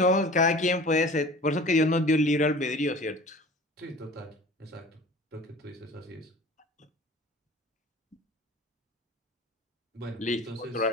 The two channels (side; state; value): both; normal; correlation 0.42